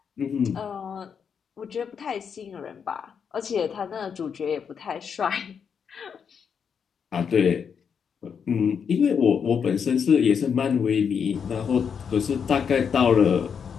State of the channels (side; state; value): right; quieter; 6.9 dB